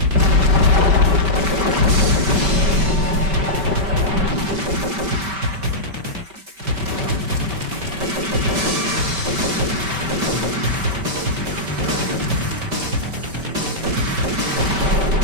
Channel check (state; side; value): late; left; 5.2 ms